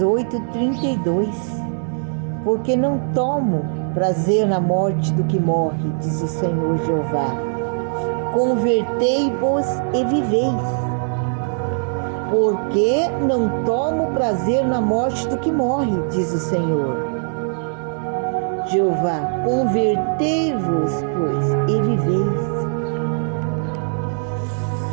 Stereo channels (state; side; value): silent; left; 65 dB below the other